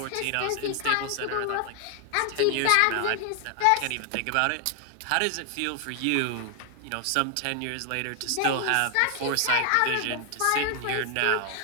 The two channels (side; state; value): both; different; correlation 0.00